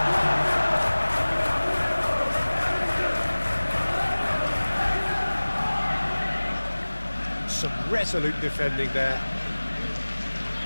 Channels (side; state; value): both; inverted; correlation -1.00